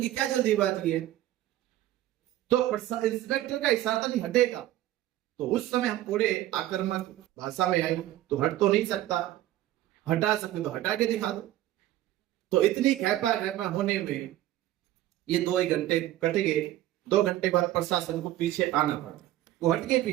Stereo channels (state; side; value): quieter; left; 14.5 dB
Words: क्या जल्दीबाजी है? तो इंस्पेक्टर का इशारा नहीं हटेगा, तो उस समय हम थोड़े आक्रामक भाषा में आए, तो हट तो नहीं सकता, हटा सकते तो हटा के दिखा दो। तो इतनी खेपा होने में ये 2 घंटे कट गए। 2 घंटे बाद प्रशासन को पीछे आना पड़ा, वो हट गए